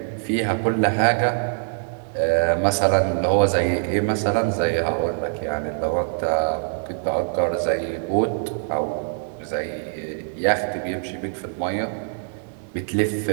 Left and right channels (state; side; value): silent; left; digital silence